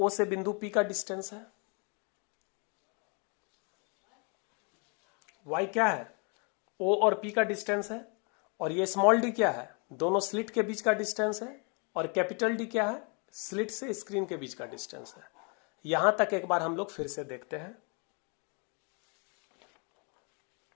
से बिंदु P का डिस्टेंस है, y क्या है, O और P का डिस्टेंस है, और ये स्मॉल d क्या है, दोनों स्लिट के बीच का डिस्टेंस है, और कैपिटल D क्या है, स्लिट से स्क्रीन के बीच का डिस्टेंस है। यहां तक एक बार हम लोग फिर से देखते हैं।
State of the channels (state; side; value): quieter; right; 34.9 dB